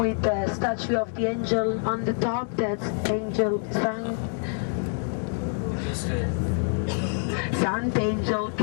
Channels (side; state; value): right; silent; 55 dB below the other